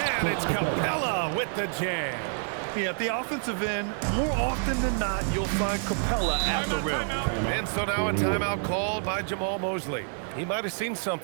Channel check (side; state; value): left; silent; 59 dB below the other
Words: And it's Capella with the jam. Yeah, at the offensive end, more often than not, you'll find Capella at the rim. And so now a timeout called by Jamal Mosley. He might have seen